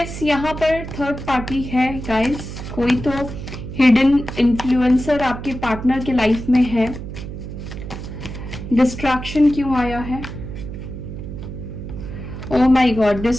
यहाँ पर थर्ड पार्टी है गाइस, कोई तो हिडन इन्फ्लुएंसर आपके पार्टनर के लाइफ में है। डिस्ट्रैक्शन क्यों आया है? ओह माय गॉड,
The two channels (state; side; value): noise; right; hum, 9 dB below the sound